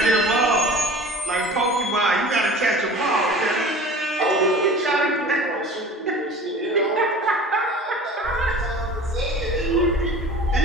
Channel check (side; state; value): both; normal; correlation 0.41